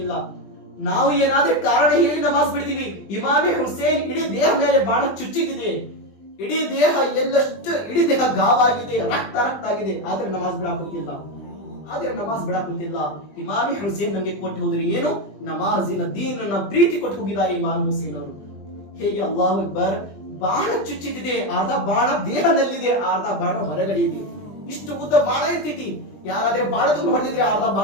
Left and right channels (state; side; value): late; right; 20 ms